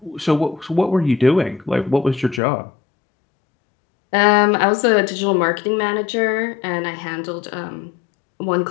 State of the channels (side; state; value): right; drops out; at 2.4 s